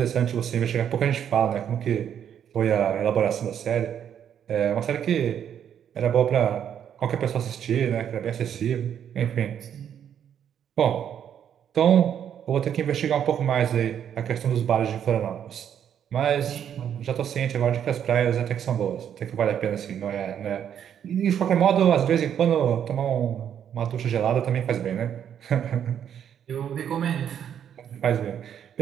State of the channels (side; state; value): left; quieter; 9.1 dB